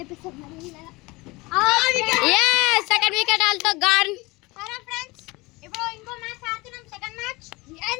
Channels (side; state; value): right; quieter; 23.2 dB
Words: సెకండ్ వికెట్ ఆల్తో గాన్. సరే ఫ్రెండ్స్, ఇప్పుడు ఇంకో మ్యాచ్ ఆడుతున్నాం, second match.